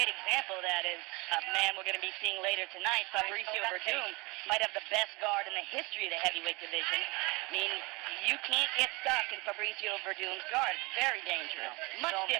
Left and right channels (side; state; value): left; quieter; 25.8 dB